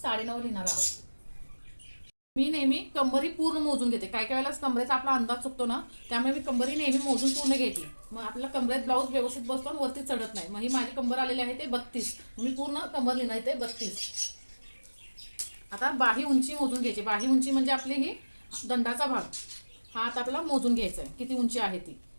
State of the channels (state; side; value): inverted; both; correlation -1.00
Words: लिहिणार आहोत। मी नेहमी कंबरी पूर्ण मोजून घेते। काय काय वेळेला कमरेचा आपला अंदाज चुकतो ना, त्यामुळे मी कंबरी नेहमी मोजून पूर्ण घेते। मग आपल्याला कमरेत ब्लाऊज व्यवस्थित बसतो आणि वरती चढत नाही। मग ही माझी कंबर आलेली आहे ते 32, मी पूर्ण कंबर लिहिणार ते 32। आता बाही उंची मोजून घ्यायची। बाही उंची म्हणजे आपली ही दंडाचा भाग, हा आता आपल्याला मोजून घ्यायचा आहे किती उंची आहे ती।